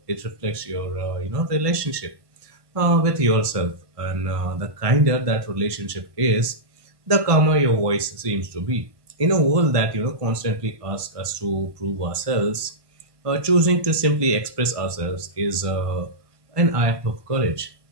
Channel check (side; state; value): left; late; 1.5 ms